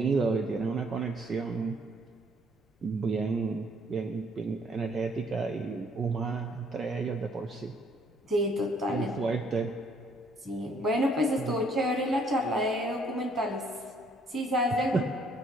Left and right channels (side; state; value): both; normal; correlation 0.65